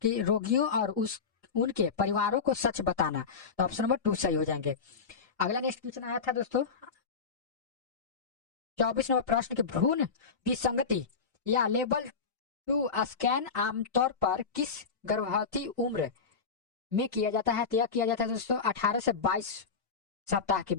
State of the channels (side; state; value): right; quieter; 5.4 dB